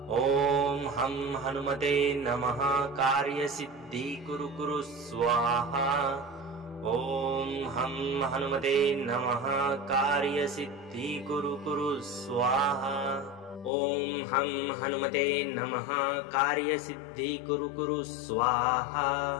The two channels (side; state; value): right; drops out; at 13.7 s